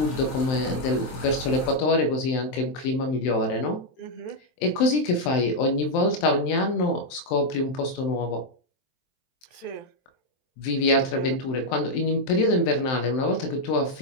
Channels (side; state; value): right; late; 23 ms